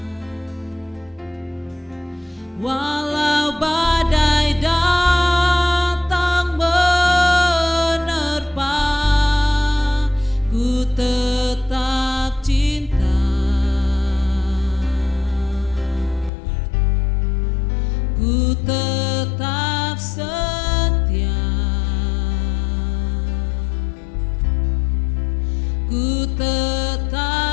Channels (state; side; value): drops out; right; at 16.3 s